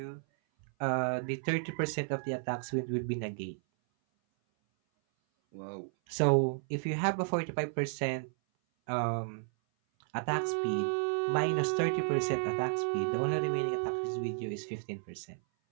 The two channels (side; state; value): left; silent; 56 dB below the other